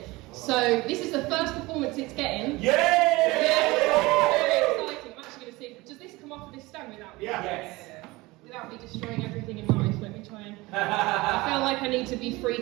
So this is the first performance it's getting. Yay! Very exciting. I'm actually going to see, does this come off of this stone without me? Yes. Without me destroying everything in life? Let me try and... I feel like I need to be free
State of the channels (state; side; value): quieter; left; 21.6 dB